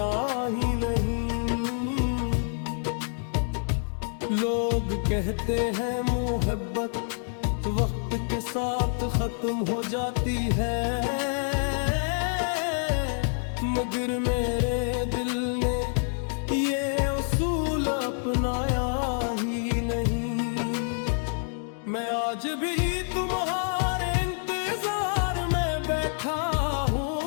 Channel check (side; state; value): right; silent; 60 dB below the other